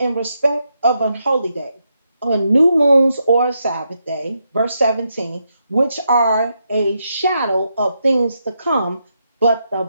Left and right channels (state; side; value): inverted; both; correlation -0.81